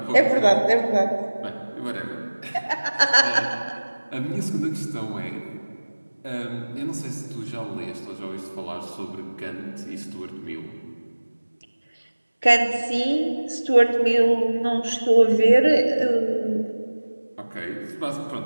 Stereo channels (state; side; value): inverted; both; correlation -1.00